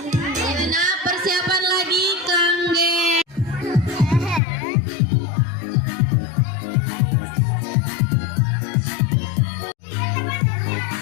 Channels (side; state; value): right; drops out; at 4.4 s